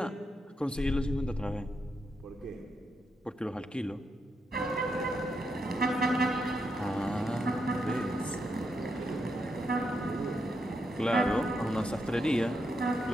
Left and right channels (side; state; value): both; normal; correlation 0.82